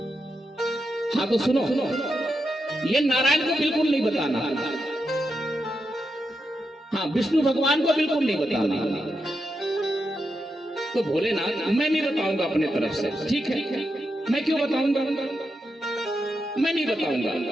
हाँ तो सुनो, ये नारायण को बिल्कुल नहीं बताना, हाँ विष्णु भगवान को बिल्कुल नहीं बताना। तो भोलेनाथ मैं नहीं बताऊंगा अपने तरफ से। ठीक है, मैं क्यों बताऊंगा? मैं नहीं बताऊंगा,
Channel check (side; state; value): both; normal; correlation 0.86